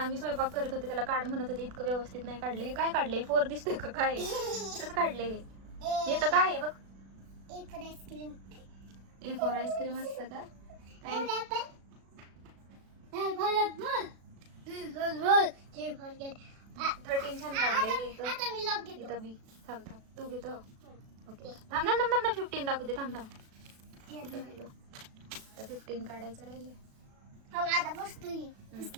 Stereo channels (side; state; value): left; late; 36 ms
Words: स्वयंपाक करत होते त्याला काढ म्हणत होते, इतकं व्यवस्थित नाही काढले. हे काय काढले? 4 दिसतोय का काय? कसं काढले हे तर काय आहे बघ. A for ice cream. A for ice cream असतं का काय? J for cat. 13 छान काढले. आता मी लॉक घेतो. इथं बी. थांब तू घेतो. ओके थांब 15 दाखवते. थांब आता 15 काढायचं राहिले. आता बसतोय.